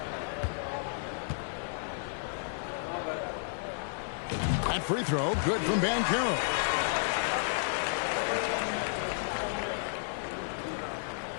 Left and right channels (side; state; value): right; silent; 56 dB below the other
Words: That free throw, good from Banchero.